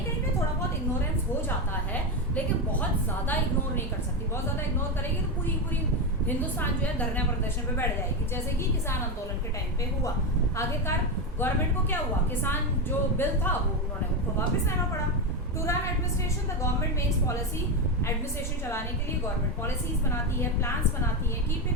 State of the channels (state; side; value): normal; both; correlation 0.12